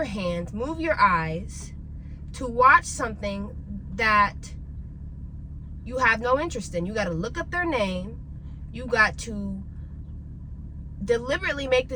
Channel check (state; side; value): identical; both; correlation 1.00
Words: hands, move your eyes to watch something that you have no interest in. You got to look up their name. You got to deliberately make